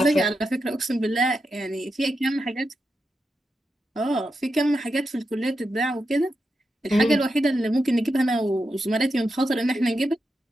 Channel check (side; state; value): both; normal; correlation 0.87